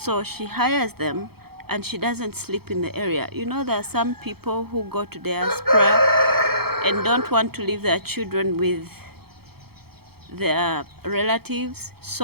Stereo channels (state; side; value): late; left; 0.96 ms